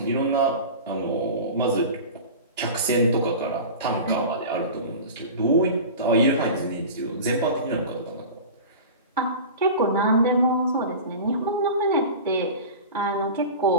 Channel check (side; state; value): both; inverted; correlation -0.33